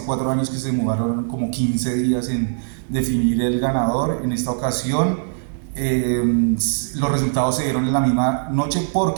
4 años que se demoraron como 15 días en definir el ganador. En esta ocasión los resultados se dieron en la misma noche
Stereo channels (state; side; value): silent; left; digital silence